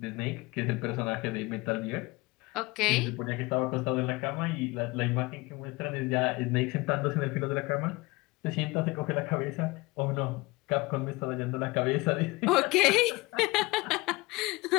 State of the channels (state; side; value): quieter; right; 22.8 dB